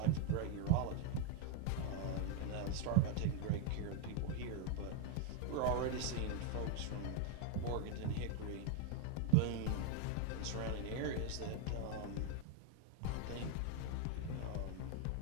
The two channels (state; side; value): different; both; correlation 0.01